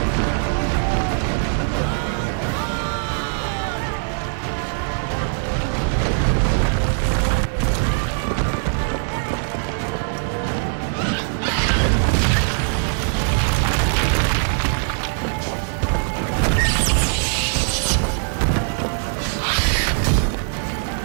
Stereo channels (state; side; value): silent; left; 65 dB below the other